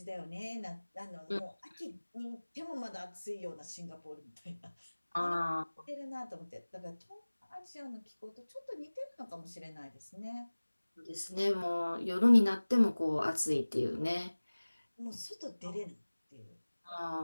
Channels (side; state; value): both; inverted; correlation -1.00